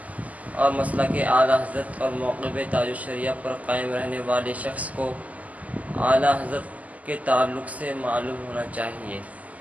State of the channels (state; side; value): late; left; 0.075 ms